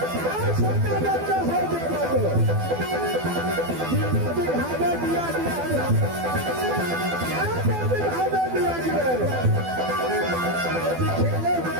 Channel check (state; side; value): late; left; 12 ms